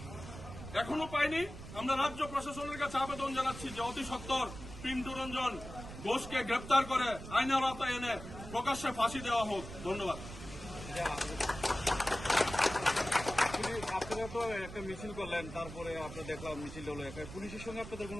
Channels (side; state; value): right; noise; rumble, 12 dB below the sound